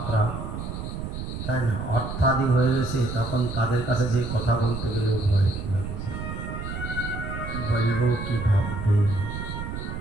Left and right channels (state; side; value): noise; right; rumble, 6 dB below the sound